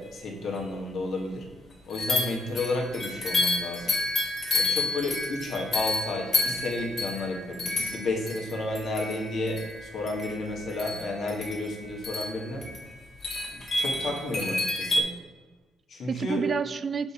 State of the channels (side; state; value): both; normal; correlation 0.78